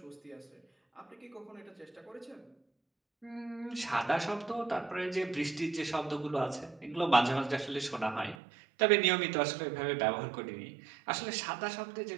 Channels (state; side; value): drops out; left; at 8.3 s